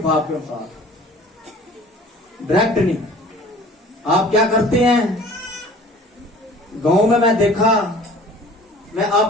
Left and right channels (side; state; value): both; normal; correlation 0.47